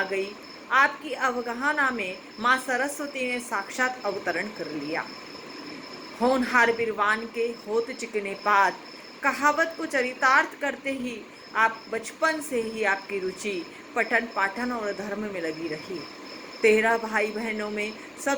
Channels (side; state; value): both; identical; correlation 1.00